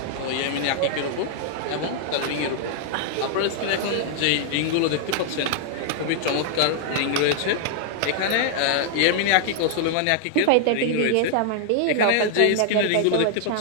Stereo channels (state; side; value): different; both; correlation -0.01